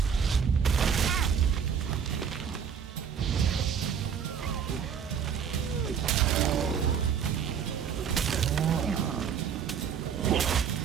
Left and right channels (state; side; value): quieter; left; 7.4 dB